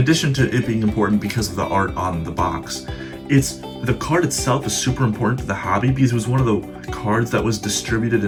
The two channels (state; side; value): identical; both; correlation 1.00